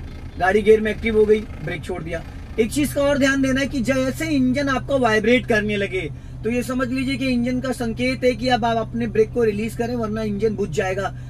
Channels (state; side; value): identical; both; correlation 1.00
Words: गाड़ी गियर में एक्टिव हो गई, ब्रेक छोड़ दिया। एक चीज का और ध्यान देना है कि जैसे इंजन आपका वाइब्रेट करने लगे तो ये समझ लीजिए कि इंजन का संकेत है कि अब आप अपने ब्रेक को रिलीज करें, वरना इंजन बुझ जाएगा।